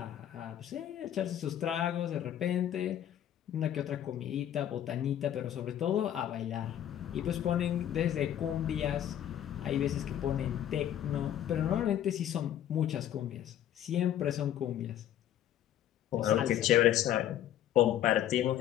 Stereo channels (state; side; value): quieter; right; 11.1 dB